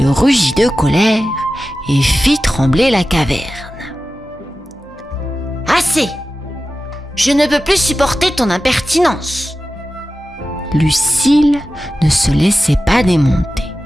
rugit de colère et fit trembler la caverne. « Assez! Je ne peux plus supporter ton impertinence !» Lucille ne se laissait pas démonter.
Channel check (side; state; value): both; normal; correlation 0.94